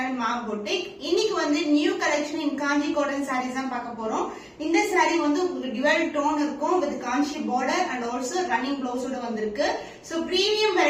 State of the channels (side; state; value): both; identical; correlation 1.00